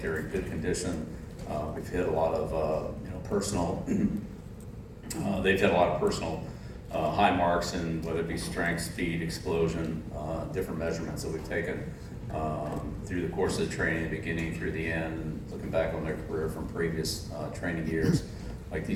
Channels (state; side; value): identical; both; correlation 1.00